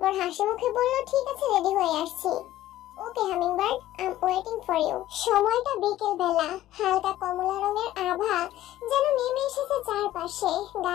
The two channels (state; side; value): quieter; right; 14.2 dB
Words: হাসি মুখে বলল, ঠিক আছে, রেডি হয়ে আসছি। Okay hummingbird, I am waiting for you. সময়টা বিকেল বেলা, হালকা কমলা রঙের আভা যেন নেমে এসেছে চারপাশে।